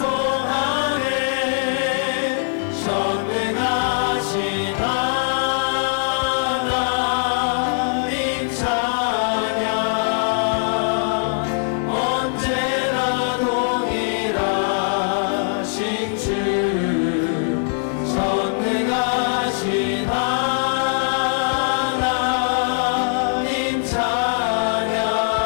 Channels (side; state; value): right; silent; 65 dB below the other